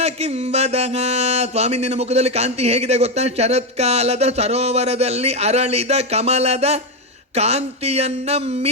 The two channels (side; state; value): both; normal; correlation 0.08